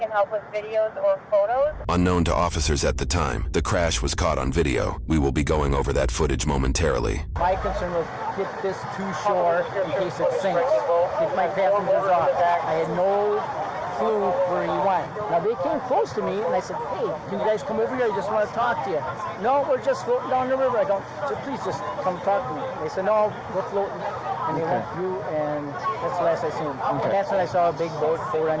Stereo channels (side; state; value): both; identical; correlation 1.00